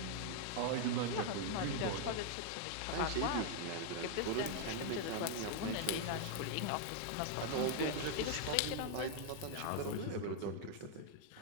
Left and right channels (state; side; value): different; both; correlation 0.00